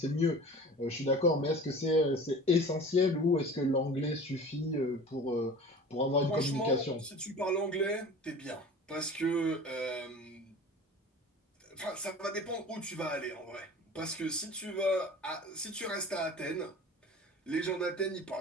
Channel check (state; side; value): normal; both; correlation 0.40